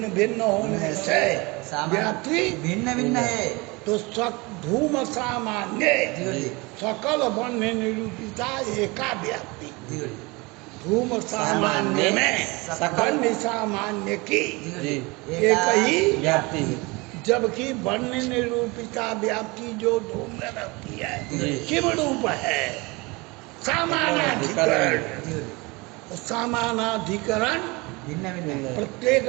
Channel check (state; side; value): quieter; left; 25.4 dB